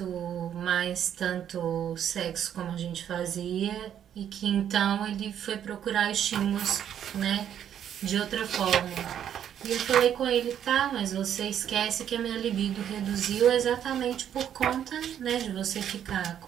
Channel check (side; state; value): left; quieter; 9.7 dB